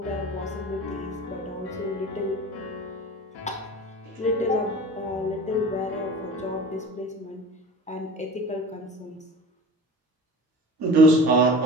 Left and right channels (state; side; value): normal; both; correlation 0.38